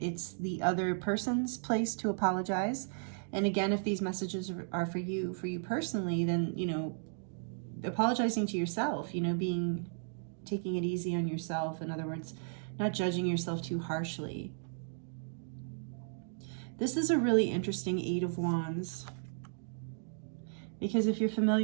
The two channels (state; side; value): silent; left; digital silence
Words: the other person's place to apologize. And again, if these messages are for you personally, then, you know, apologizing to yourself, you know, taking it easy on yourself. In other words, not judging yourself too harshly. This is a really interesting 8 of Wands. Because if you're